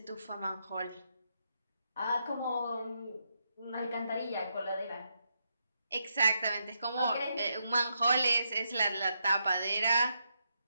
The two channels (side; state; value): both; inverted; correlation -0.81